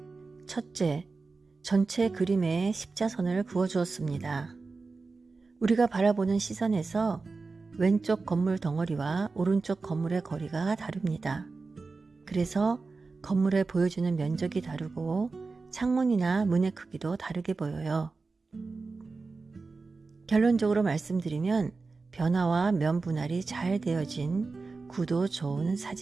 첫째, 전체 그림에 십자선을 그어주었습니다. 우리가 바라보는 시선에서 왼쪽 건물 덩어리와 오른쪽 건물의 거리가 다릅니다. 그래서 건물에 보여주는 면적이 다르고 창문이나 문의 크기도 다르게 보여요. 결론적으로 말씀드리면 변화와 면 분할이 잘 되어진 구도 좋은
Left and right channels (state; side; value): quieter; left; 4.0 dB